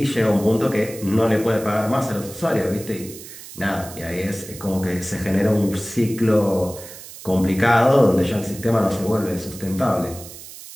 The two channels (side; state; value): right; noise; hiss, 15 dB below the sound